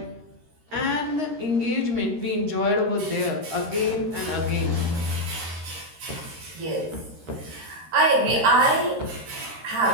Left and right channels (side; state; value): left; late; 13 ms